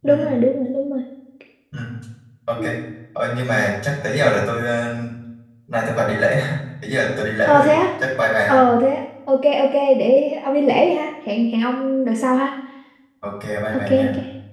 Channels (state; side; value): identical; both; correlation 1.00